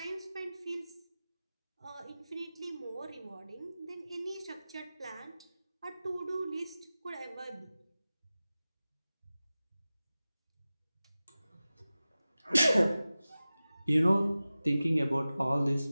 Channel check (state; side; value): inverted; both; correlation -0.96